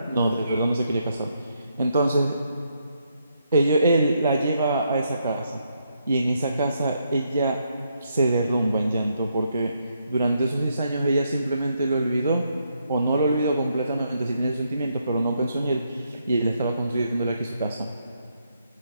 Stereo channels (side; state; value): both; inverted; correlation -0.77